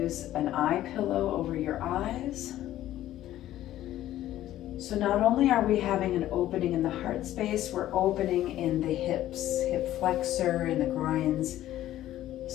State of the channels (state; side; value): quieter; right; 13.5 dB